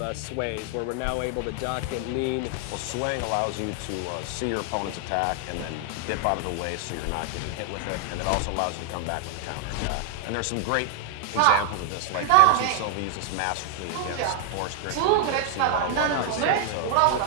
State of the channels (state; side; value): different; both; correlation 0.00